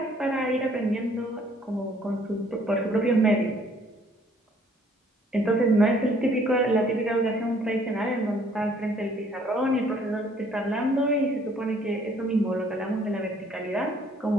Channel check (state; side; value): normal; both; correlation 0.61